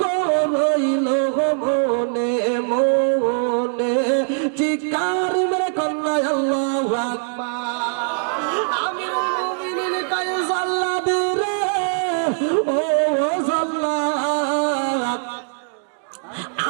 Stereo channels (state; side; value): silent; left; digital silence